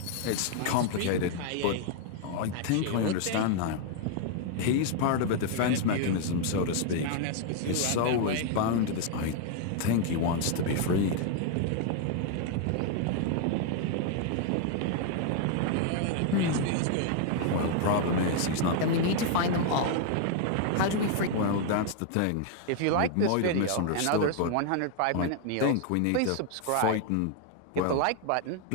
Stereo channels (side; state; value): both; different; correlation 0.00